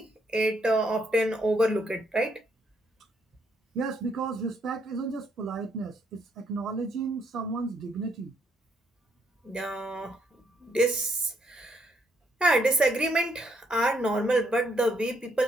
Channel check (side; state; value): both; normal; correlation 0.73